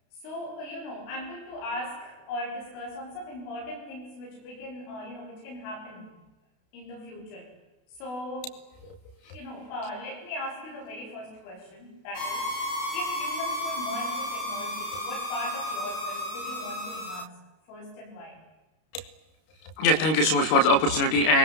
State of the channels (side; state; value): right; late; 32 ms